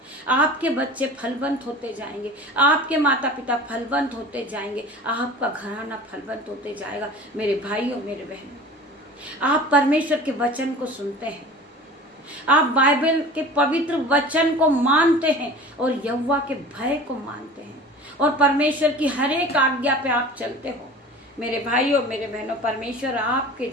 आपके बच्चे फलवंत होते जाएंगे। आपके माता पिता फलवंत होते जाएंगे। आपका घराना फलवंत होते जाएगा। मेरे भाइयों मेरे बहनों, आप परमेश्वर के वचन को सुनते हैं, आप बाइबल के पवित्र वचन को मानते हैं और यहोवा के भय को मानते हैं और परमेश्वर की हर एक आज्ञा पे आप चलते हो। मेरे भाइयों मेरे बहनों, परमेश्वर आपके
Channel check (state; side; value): normal; both; correlation 0.39